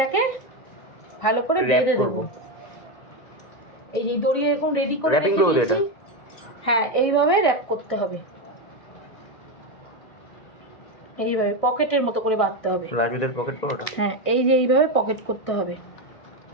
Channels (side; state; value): right; late; 1.9 ms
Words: ভালো করে বেঁধে দেবো। এই যে দড়ি এরকম রেডি করে র‍্যাপিং করব এটা। হ্যাঁ, এইভাবে র‍্যাপ করতে হবে। এইভাবে পকেটের মতো করে বাঁধতে হবে। রাজুদের পকেট পরোটা। হ্যাঁ, এই যে এইভাবে পকেট করতে হবে।